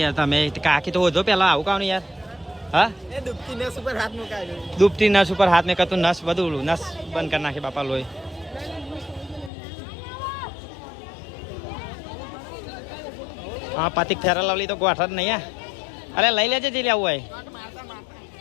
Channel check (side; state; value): right; drops out; at 9.5 s